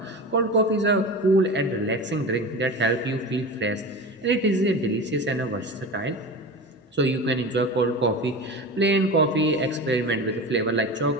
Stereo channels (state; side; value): normal; both; correlation 0.29